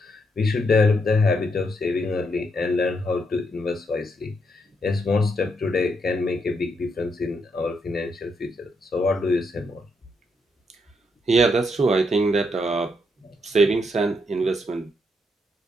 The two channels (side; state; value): both; normal; correlation 0.78